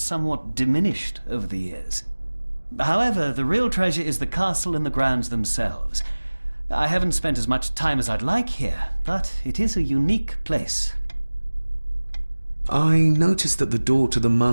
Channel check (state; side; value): inverted; both; correlation -1.00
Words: diminished over the years. However, the real treasure is the castle and the grounds themselves. I haven't spent as much time as I'd like here, but it is a unique place. I noticed that the door to the